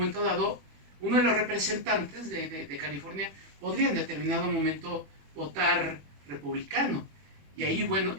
dado uno de los representantes de California podría en determinado momento votar republicano y ahí bueno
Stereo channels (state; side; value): late; left; 21 ms